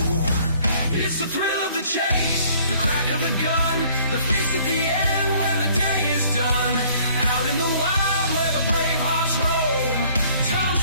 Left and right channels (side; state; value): both; inverted; correlation -0.58